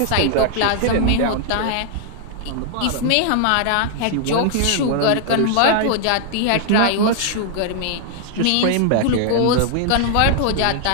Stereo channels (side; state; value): both; different; correlation -0.01